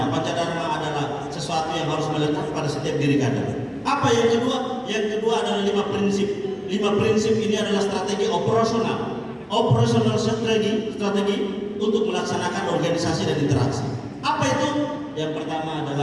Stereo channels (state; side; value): identical; both; correlation 1.00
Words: Pancadharma adalah sesuatu yang harus melekat pada setiap diri kader. Apa yang kedua? Yang kedua adalah 5 prinsip. 5 prinsip ini adalah strategi operasional. Operational strategi untuk melaksanakan organisasi dan interaksi. Apa itu? Yang pertama